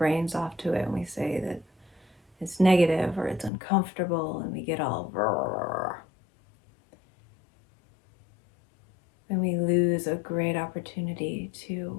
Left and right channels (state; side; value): drops out; right; at 3.5 s